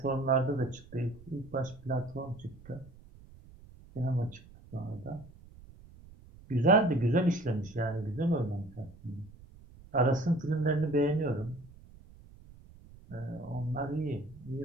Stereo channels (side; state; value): right; noise; rumble, 21 dB below the sound